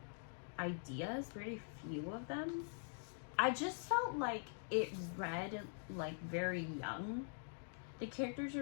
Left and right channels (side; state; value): right; silent; digital silence